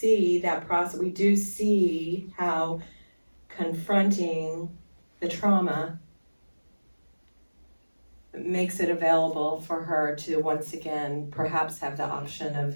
that process. We do see how confronting the trauma makes it available for her to once again perhaps have the option of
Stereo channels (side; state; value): both; inverted; correlation -1.00